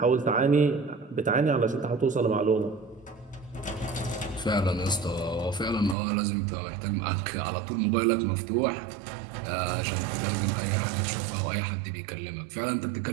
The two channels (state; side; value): drops out; left; at 6.0 s